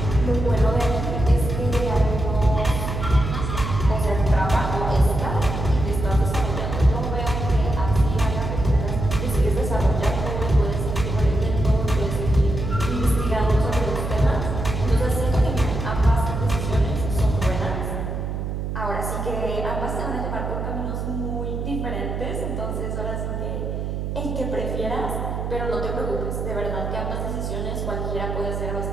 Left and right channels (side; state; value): right; noise; hum, 3 dB below the sound